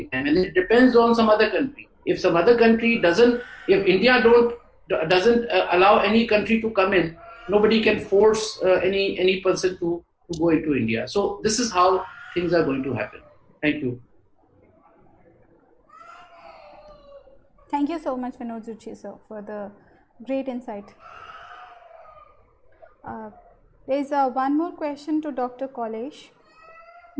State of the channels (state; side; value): identical; both; correlation 1.00